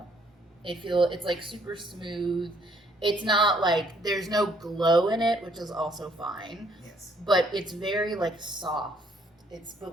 It's super smooth. It's not there's no glow in it, which is also fine. Yes. But it's very soft.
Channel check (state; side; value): normal; both; correlation 0.66